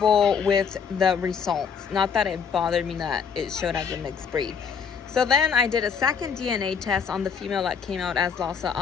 with the results. Not that it bothered me that it showed as a mixed breed. So then I did a second DNA test on the female that came out as Lhasa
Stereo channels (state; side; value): quieter; right; 6.6 dB